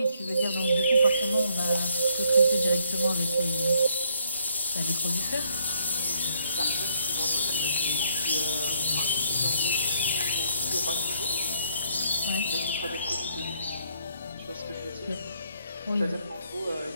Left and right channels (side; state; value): both; inverted; correlation -0.70